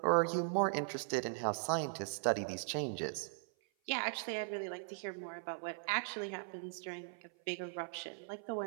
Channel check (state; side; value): silent; left; 52 dB below the other